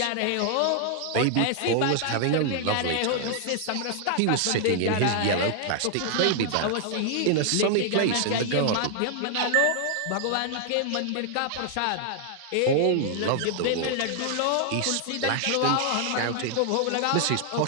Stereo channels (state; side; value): different; both; correlation 0.00